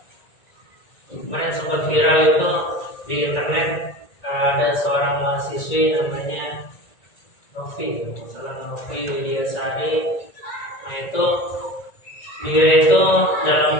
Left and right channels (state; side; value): late; right; 1.9 ms